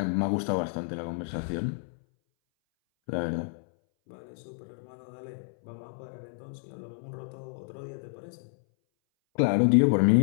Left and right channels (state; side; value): silent; right; 58 dB below the other